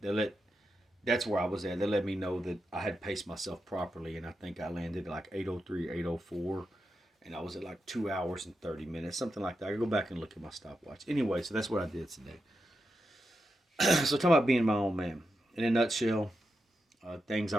let, that's where I was at. They let me know that I had paced myself properly, and I think I landed like 8:03, 8:04, and I was at like 2 hours and 30 minutes, something like that. I could go back and look at my stopwatch. Anyway, so that's what I did today. So talking about being my own man. In a nutshell, things I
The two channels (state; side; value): normal; both; correlation 0.87